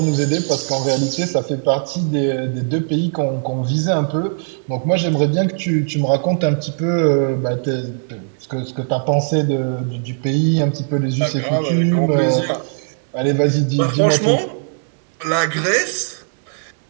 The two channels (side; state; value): left; silent; 64 dB below the other